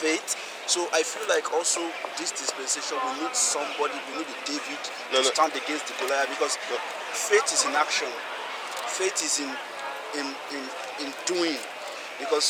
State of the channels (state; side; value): identical; both; correlation 1.00